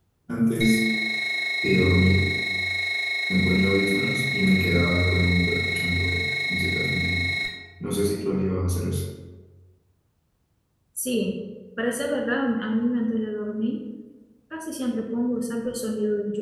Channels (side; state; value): both; identical; correlation 1.00